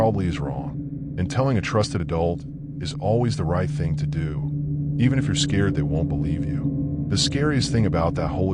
is wrong. And telling a trusted adult is always the right thing to do, even if you're scared they won't believe you. The scariest thing about that whole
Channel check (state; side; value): identical; both; correlation 1.00